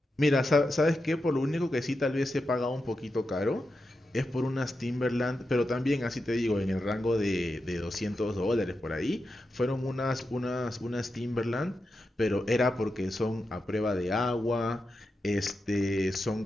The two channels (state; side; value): normal; both; correlation 0.89